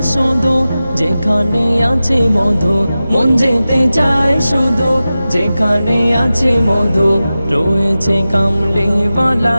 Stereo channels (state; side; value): inverted; both; correlation -0.94